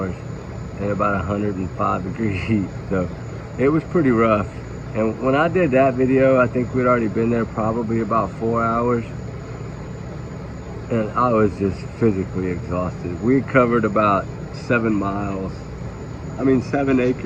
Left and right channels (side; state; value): both; identical; correlation 1.00